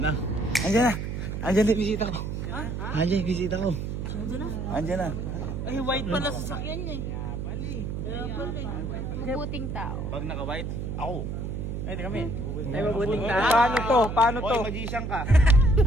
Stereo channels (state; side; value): noise; right; hum, 4 dB below the sound